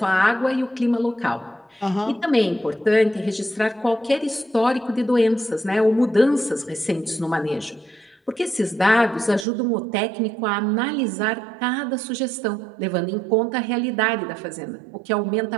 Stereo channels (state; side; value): drops out; left; at 9.5 s